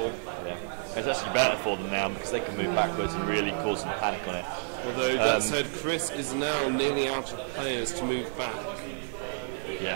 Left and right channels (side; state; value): left; silent; 58 dB below the other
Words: Yeah. It's actually better for them now because they can move backwards and really cause some panic on it. Although that said, Chris is now nearly out of players to move back.